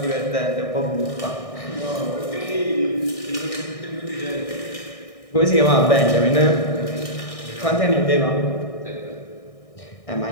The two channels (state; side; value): late; right; 1.6 ms